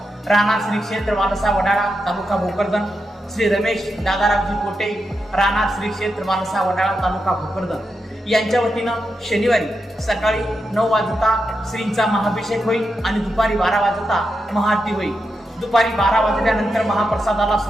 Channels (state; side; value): normal; both; correlation 0.87